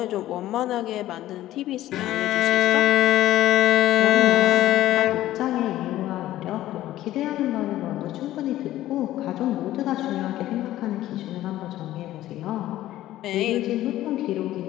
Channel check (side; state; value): right; quieter; 14.4 dB